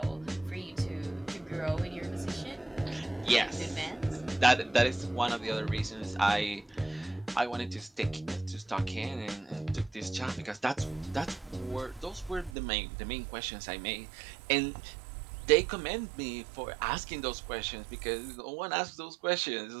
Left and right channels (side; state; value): left; drops out; at 12.5 s